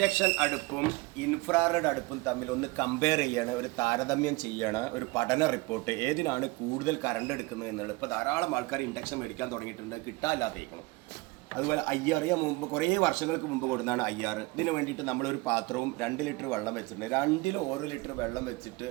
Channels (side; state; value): left; quieter; 23.3 dB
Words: അടുപ്പും ഇൻഫ്രാറെഡ് അടുപ്പും തമ്മിൽ ഒന്ന് കമ്പയർ ചെയ്യാണ്, ഒരു താരതമ്യം ചെയ്യാണ്, ഒരു പഠന റിപ്പോർട്ട് ഏതിനാണ് കൂടുതൽ കറണ്ട് എടുക്കുന്നത് എന്നുള്ളത്. ഇപ്പോൾ ധാരാളം ആൾക്കാർ ഇൻഡക്ഷൻ മേടിക്കാൻ തുടങ്ങിയിട്ടുണ്ട്, കിട്ടാനില്ലാത്തേക്കണം. അതുപോലെ IR ഞാൻ മുമ്പ് കുറേ വർഷങ്ങൾക്ക് മുമ്പ് കൊടുക്കുന്നതാണ് IR. ഇതിന് വേണ്ടിയിട്ട് നമ്മളൊരു പാത്രവും 2 ലിറ്റർ വെള്ളം വെച്ചിട്ടുണ്ട്. 2-ലും 1 ലിറ്റർ വെള്ളം വെച്ചിട്ട്